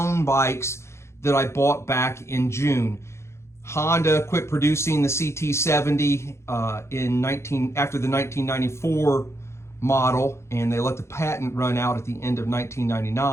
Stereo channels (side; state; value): right; late; 0.13 ms